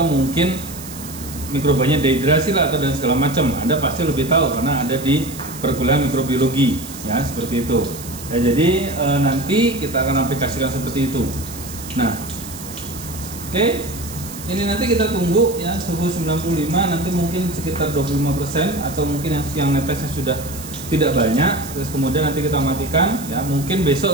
mungkin mikrobanya dehidrasi lah atau dan segala macam. Anda pasti lebih tahu karena ada di perkuliahan mikrobiologi ya, seperti itu ya. Jadi nanti kita akan aplikasikan seperti itu. Nah, oke, ini nanti kita tunggu ya suhu 95, nanti mungkin sekitar 25% atau mungkin yang netesnya sudah tidak banyak. Terus kemudian nanti kita matikan ya, mungkin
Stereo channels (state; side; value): noise; right; hiss, 13 dB below the sound